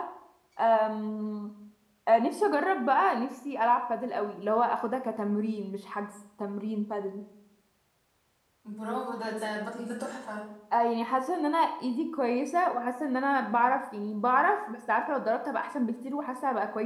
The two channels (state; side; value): identical; both; correlation 1.00